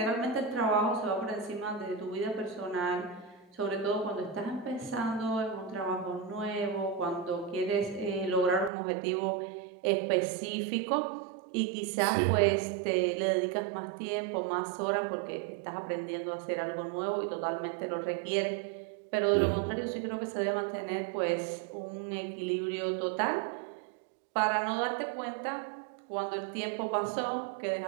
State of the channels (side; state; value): left; drops out; at 8.7 s